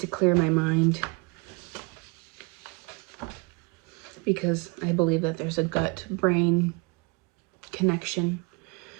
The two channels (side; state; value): left; quieter; 29.1 dB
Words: clear my mind, because I believe that there's a gut-brain connection.